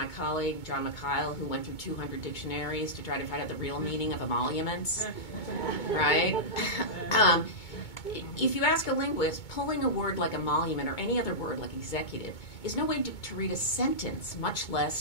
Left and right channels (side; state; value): right; late; 2.2 ms